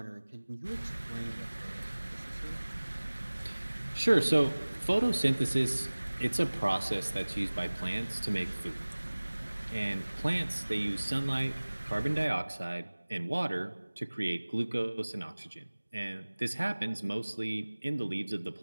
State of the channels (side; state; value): both; inverted; correlation -1.00